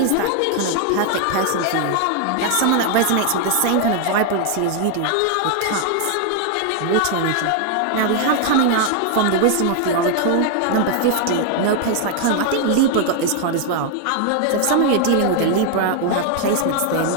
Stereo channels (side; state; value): both; different; correlation 0.00